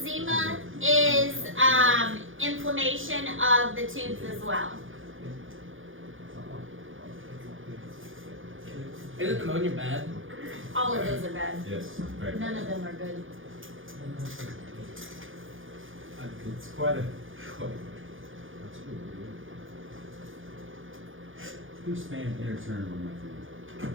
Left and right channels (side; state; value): left; late; 0.58 ms